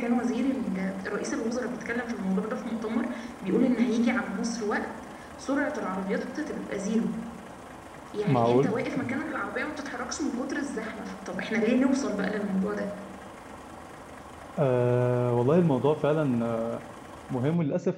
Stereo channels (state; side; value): identical; both; correlation 1.00